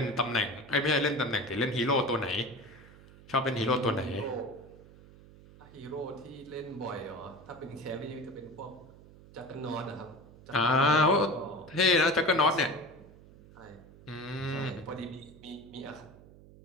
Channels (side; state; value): right; noise; hum, 21 dB below the sound